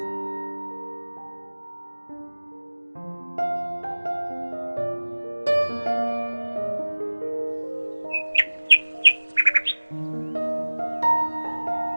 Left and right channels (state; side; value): inverted; both; correlation -1.00